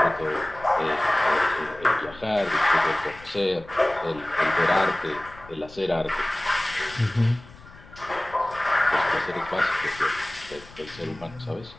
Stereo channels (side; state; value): left; noise; rumble, 21 dB below the sound